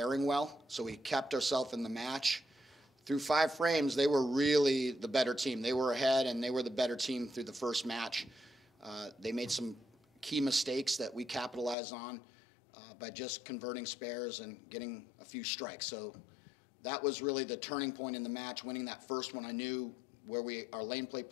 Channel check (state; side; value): drops out; right; at 11.8 s